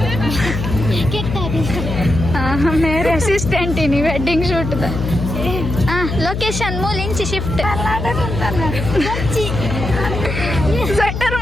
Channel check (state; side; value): noise; left; hum, 4 dB below the sound